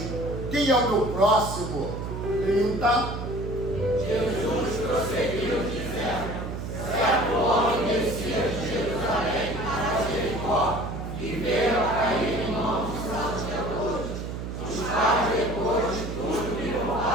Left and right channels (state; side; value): noise; right; hum, 6 dB below the sound